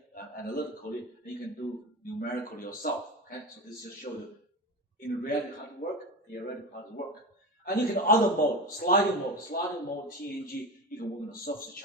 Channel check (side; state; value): both; normal; correlation 0.24